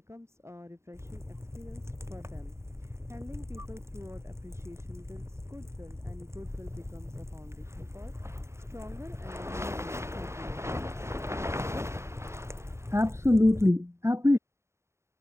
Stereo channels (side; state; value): left; late; 0.13 ms